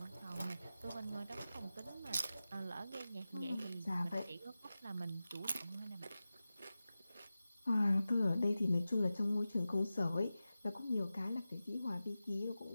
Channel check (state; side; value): inverted; both; correlation -0.94